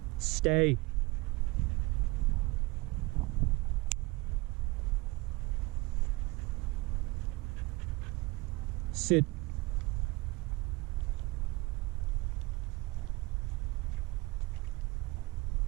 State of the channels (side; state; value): left; quieter; 23.0 dB